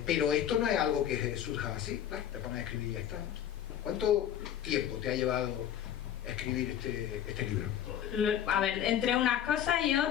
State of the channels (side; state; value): right; quieter; 10.2 dB